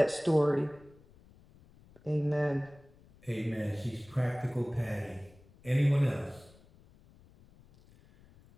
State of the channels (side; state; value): left; noise; rumble, 26 dB below the sound